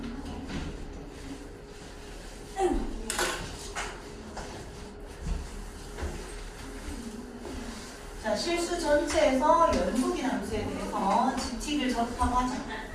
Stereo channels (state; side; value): identical; both; correlation 1.00